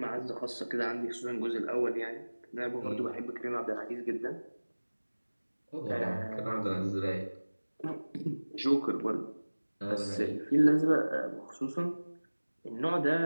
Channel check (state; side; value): inverted; both; correlation -1.00